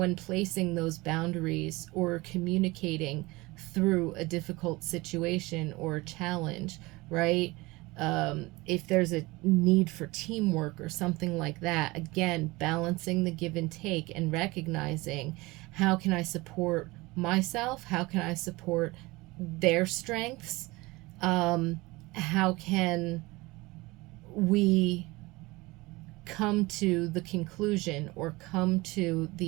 placing those boundaries or communicating through a difficult situation or a challenge, right? If there's a need for teamwork or something like that, again, balancing the give and take and recognizing, how can I support myself? How can I support their strengths? How can we come to the conclusion, or come to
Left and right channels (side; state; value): left; quieter; 22.2 dB